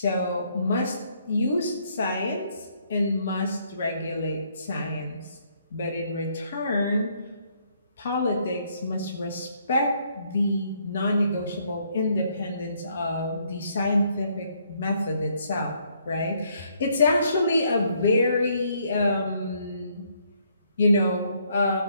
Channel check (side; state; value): both; inverted; correlation -0.69